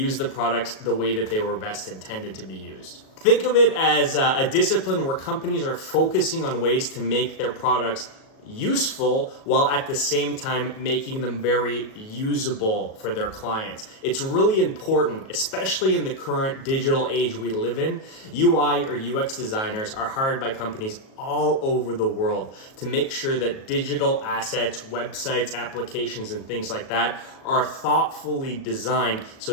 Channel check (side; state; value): right; late; 37 ms